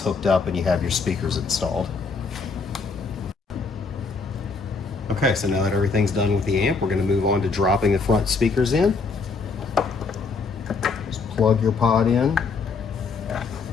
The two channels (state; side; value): quieter; right; 4.5 dB